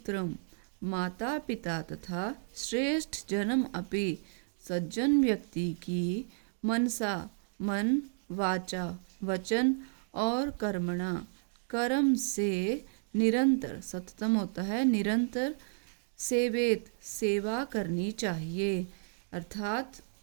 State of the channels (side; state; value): left; silent; digital silence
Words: माता पिता तथा श्रेष्ठ जन्म अपि सज्जन व्यक्ति की मनसा मन, वाचा वचन और कर्मणा कर्म से निरंतर, सततम होता है निरंतर, सेवेत सेवा करनी चाहिए। अर्थात